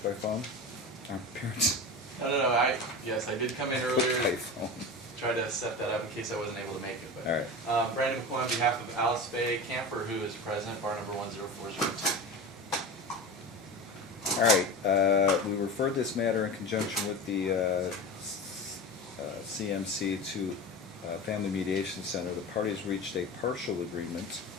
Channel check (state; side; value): normal; both; correlation 0.29